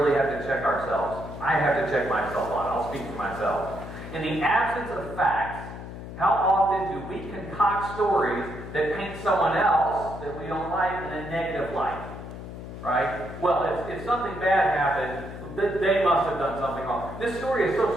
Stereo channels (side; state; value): left; noise; hum, 11 dB below the sound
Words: have to check ourselves. I have to check myself on. I'll speak for myself. In the absence of facts, how often do we concoct stories that paint someone else that we don't like in a negative light? Right? Well, if something bad happened, they must have done something wrong. This story is so